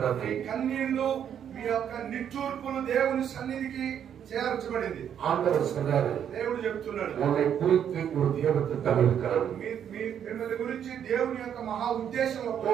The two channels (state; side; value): quieter; left; 9.0 dB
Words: కన్నీళ్లు, మీ యొక్క నిట్టూర్పులు దేవుని సన్నిధికి చేర్చబడింది. ஆண்டவர் சொல்றாரு, దేవుడు చెప్తున్నాడు, உன்னை குறித்து ஒரு தேவத்திட்டம் இருக்கிறது. మిమ్మల్ని గురించి దేవుని యొక్క మహా ఉద్దేశం